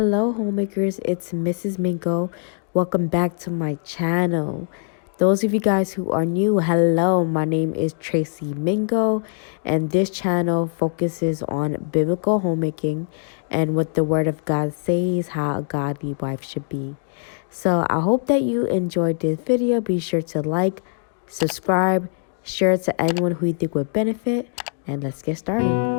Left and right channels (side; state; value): right; silent; 57 dB below the other